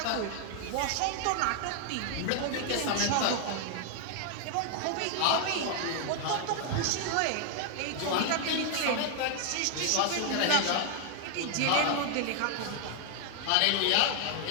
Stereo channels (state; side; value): different; both; correlation 0.00